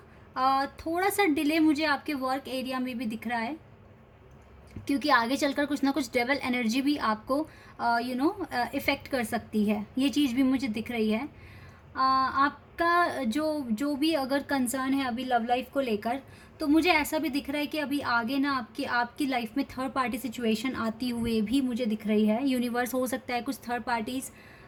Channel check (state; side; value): identical; both; correlation 1.00